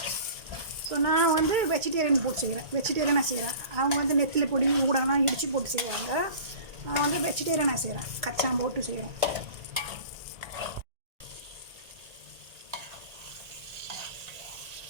ஸோ நான் வந்து வெஜிடேரியன் போட்டு செய்கிறேன், வெஜிடேரியனாக செய்கிறேன். அவங்க வந்து நெத்திலி பொடி ஊடகம்லாம் இடித்து போட்டு செய்வாங்க. நான் வந்து வெஜிடேரியனாக செய்கிறேன், கச்சான் போட்டு செய்கிறேன்.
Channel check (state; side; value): late; left; 1.8 ms